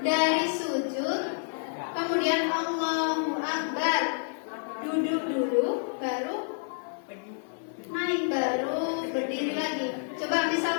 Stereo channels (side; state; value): right; silent; digital silence